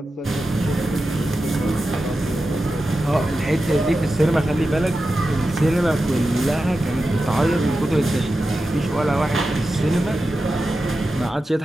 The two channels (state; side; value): normal; both; correlation 0.92